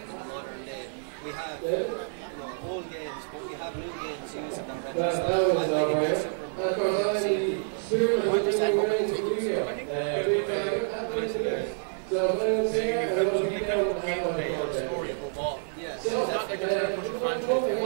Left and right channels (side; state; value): left; silent; 59 dB below the other